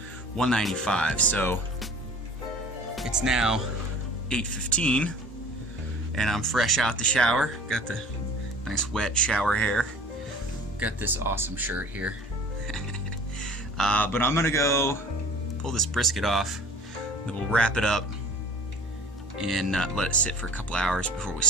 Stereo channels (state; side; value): normal; both; correlation 0.45